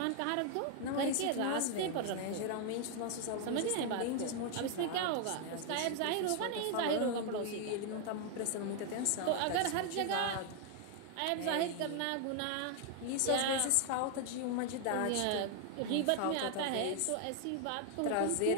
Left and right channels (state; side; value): different; both; correlation 0.00